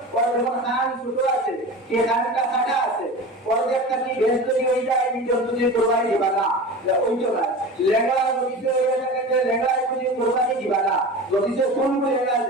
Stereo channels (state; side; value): normal; both; correlation 0.32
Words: ওর যখন কান ছোট আছে কে কানটা কাটা আছে ওর একটা কি বেশ তৈরি হয়ে যায় এই জন্তু দিয়ে কোরবানি দিবা না ওই তো না লেঙ্গা যদি হয়ে থাকে লেঙ্গা যদি কোরবানি দিবা না যদি কোন লেঙ্গা